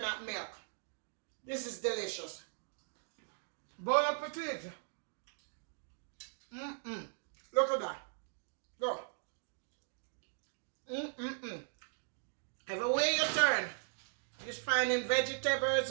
milk. This is delicious. Bon appetit. Look at that. Go. Everywhere you turn, Just finding vegetables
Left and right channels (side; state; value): left; silent; digital silence